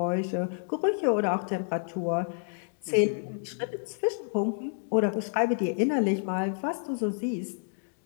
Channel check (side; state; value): right; silent; 58 dB below the other